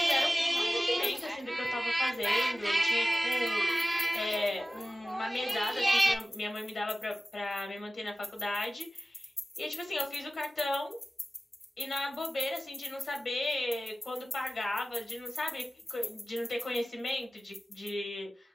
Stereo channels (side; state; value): both; normal; correlation 0.96